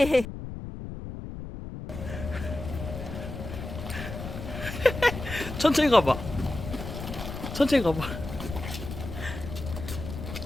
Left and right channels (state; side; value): noise; left; rumble, 8 dB below the sound